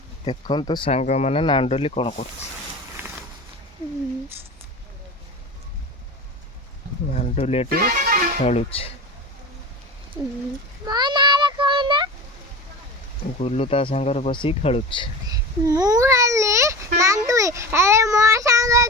ଦେଖନ୍ତୁ ସାଙ୍ଗମାନେ ନାଣ୍ଡୁଲି କ'ଣ କରୁଛି। ନାଣ୍ଡୁଲି ଏଠି ଖେଳୁଛି। ଗୁଲୁ ତା ସାଙ୍ଗରେ ବସିକି ଖେଳୁଛି। ମୁଁ ହେଲି ନାଣ୍ଡୁଲି, ଆରେ ମୋ ସାଙ୍ଗ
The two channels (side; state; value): both; normal; correlation 0.31